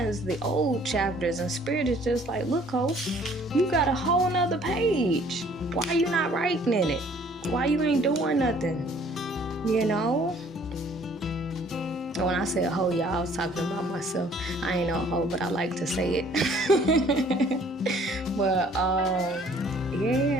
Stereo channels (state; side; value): normal; both; correlation 0.57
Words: the old chapters, and Spirit is just like, look, ho, you got a whole nother page. Why you not writing in it? Why you ain't doing nothing? You know? When I said hoe, y'all, I was talking about myself. I ain't no hoe, but I like to say it. But